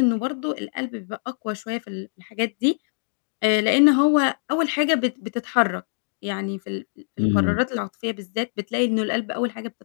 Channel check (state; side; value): silent; right; digital silence